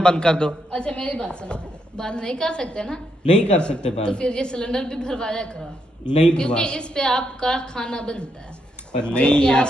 बंद कर दो? अच्छा मेरी बात सुनो, बंद नहीं कर सकते ना, नहीं कर सकते तो बंद, फिर ये सिलेंडर भी भरवाया करो, नहीं क्योंकि भरवा। इस पे आपका खाना बनता है। पर नहीं यार,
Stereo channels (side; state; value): both; normal; correlation 0.79